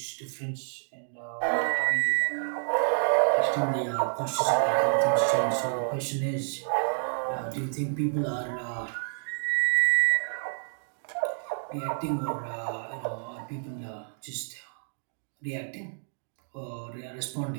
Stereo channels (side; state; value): left; silent; digital silence